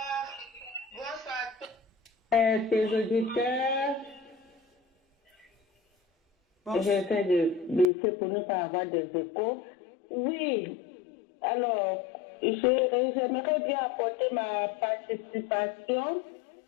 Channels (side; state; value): right; drops out; at 7.9 s